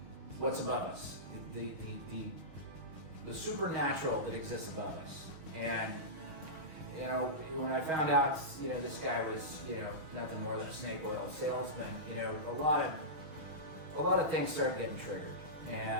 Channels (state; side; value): late; left; 6.4 ms